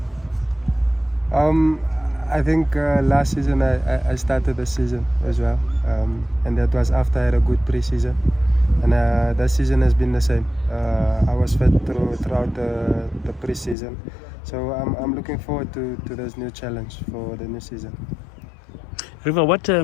I think last season I started the season as well, and that was after I had a good pre-season, and that season has been the same. I was fit throughout the pre-season, so I'm looking forward to this new challenge for the new season. Riva, what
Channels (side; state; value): right; drops out; at 13.8 s